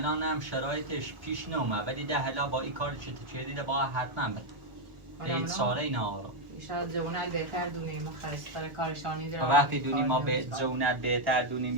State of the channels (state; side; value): late; left; 1.4 ms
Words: هم شرایطش پیش نومه ولی ده هلا با این کار چه دیده با حتما بده این ساره این آرام شاید جونت بهتر دونیم خستر کارشانی داره وقتی دونیم ما به جونت بهتر دونیم